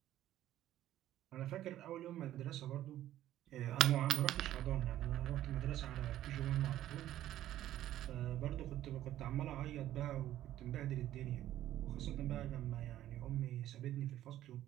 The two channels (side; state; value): left; quieter; 13.0 dB